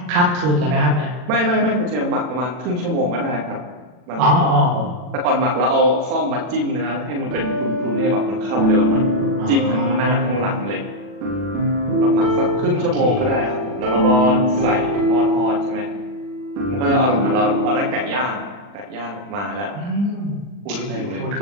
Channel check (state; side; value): late; left; 40 ms